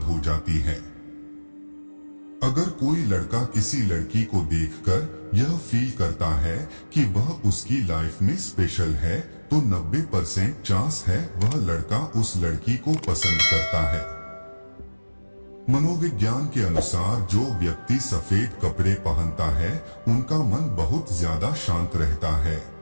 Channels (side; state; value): both; inverted; correlation -1.00